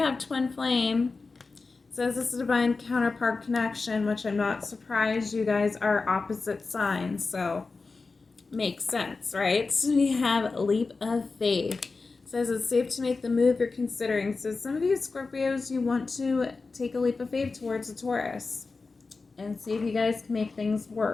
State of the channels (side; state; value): right; quieter; 4.0 dB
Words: twin flame. It says this is a divine counterpart connection, which I'm not surprised you guys are opposite signs. So makes sense, right? So we have leap of faith. Says it's safe to make the move you're considering. So some of you Scorpios, you want to take a leap of faith towards a Taurus and see if you guys can make things